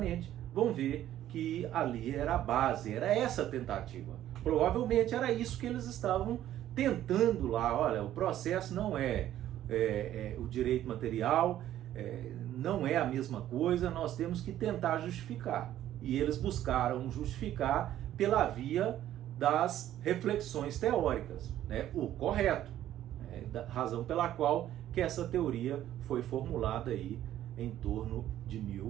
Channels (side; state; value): left; quieter; 12.4 dB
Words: vão ver que ali era a base, era essa a tentativa. Provavelmente era isso que eles estavam tentando lá. Olha, o processo não é o direito material, não é a mesma coisa, nós temos que tentar justificar. E eles buscaram justificar pela via das reflexões teóricas, né? O correto, da razão pela qual que essa teoria foi formulada aí em torno de